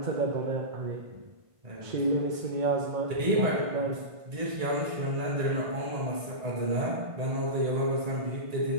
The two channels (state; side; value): late; left; 1.5 ms